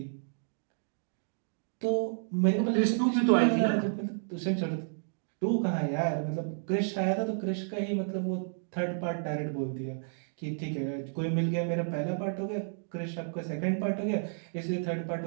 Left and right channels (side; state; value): left; silent; digital silence